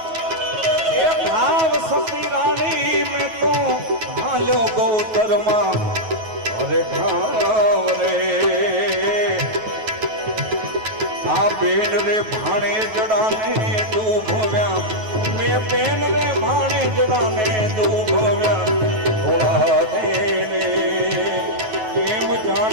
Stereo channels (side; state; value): left; late; 9.3 ms